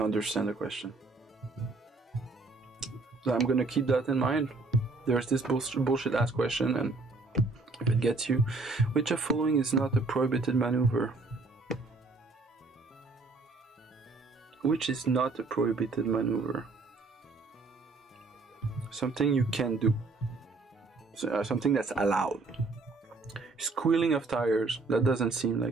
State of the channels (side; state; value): left; quieter; 3.6 dB